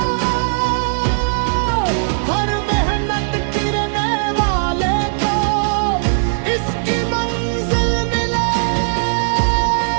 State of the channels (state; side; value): silent; left; digital silence